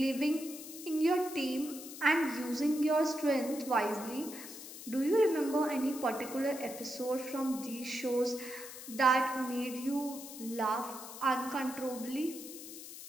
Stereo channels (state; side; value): noise; left; hiss, 12 dB below the sound